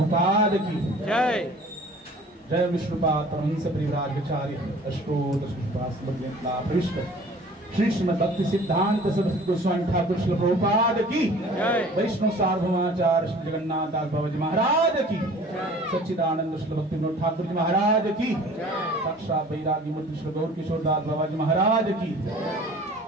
की जय। जय विष्णुपाद वंश परिवार विचार्य अष्टोत्तर श्री कृष्णपाद समृद्ध मिथिला पृष्ठ श्री श्रीमद् भक्ति सिद्धांत सरस्वती गोस्वामी ठाकुर श्रील प्रभुपाद की, वैष्णव सार्वभौमाचार्य श्री जगन्नाथ दास बाबा जी महाराज की, सच्चिदानंद श्री भक्ति विनोद ठाकुर जी महाराज की, साक्षात वैरागी मूर्ति श्री गौर किशोर दास बाबा जी महाराज की,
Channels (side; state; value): both; normal; correlation 0.48